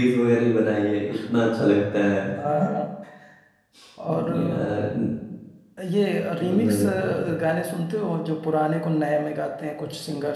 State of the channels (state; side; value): identical; both; correlation 1.00